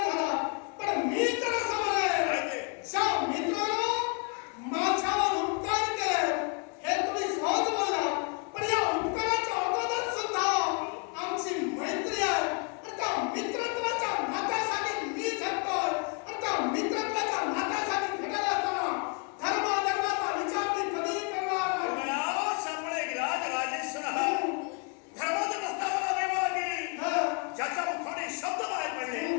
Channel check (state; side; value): quieter; right; 36.2 dB